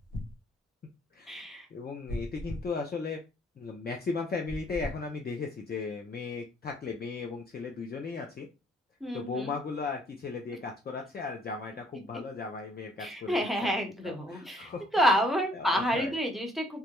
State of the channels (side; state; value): both; normal; correlation 0.63